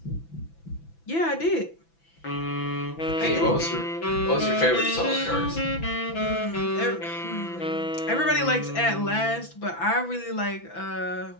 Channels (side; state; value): right; late; 6.0 ms